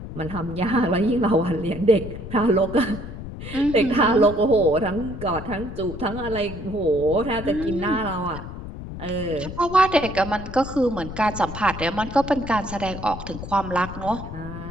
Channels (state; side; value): noise; left; rumble, 10 dB below the sound